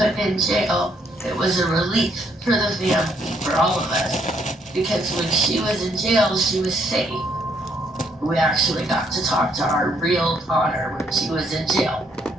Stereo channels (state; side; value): normal; both; correlation 0.70